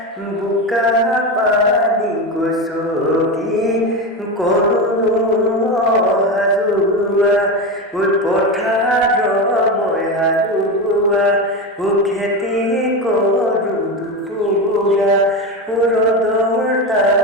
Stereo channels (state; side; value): normal; both; correlation 0.18